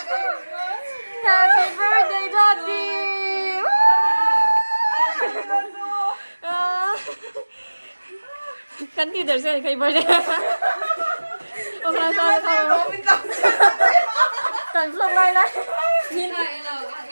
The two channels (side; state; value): both; inverted; correlation -1.00